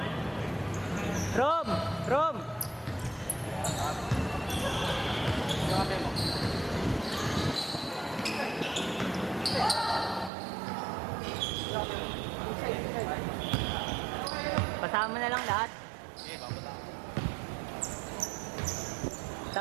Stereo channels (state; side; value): drops out; left; at 10.3 s